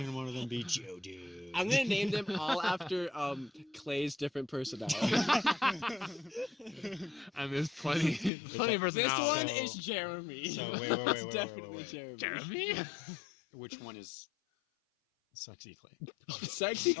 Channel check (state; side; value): drops out; right; at 8.3 s